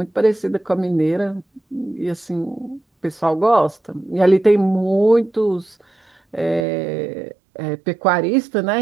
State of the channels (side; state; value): left; drops out; at 6.7 s